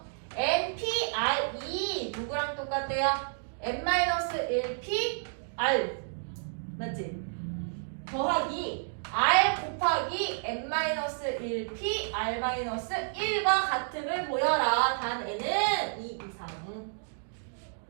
NPR이 누구랑 똑같대요? N-1P R 맞지? 더하기 R 곱하기 N-1P R-1과 같음을 보여라. 단 N은 2 이상.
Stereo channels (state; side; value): silent; left; digital silence